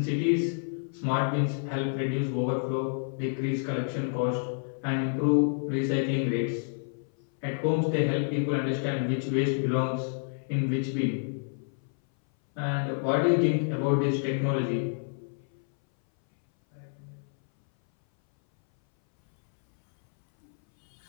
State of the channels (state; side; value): silent; right; 59 dB below the other